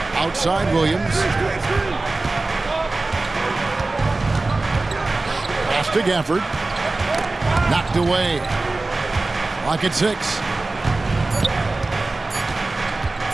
Outside Williams. Pass to Gafford. Knocked away. Clock at 6.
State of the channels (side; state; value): left; quieter; 3.2 dB